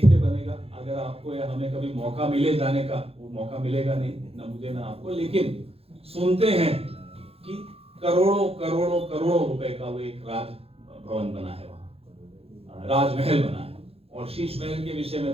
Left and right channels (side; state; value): left; late; 0.28 ms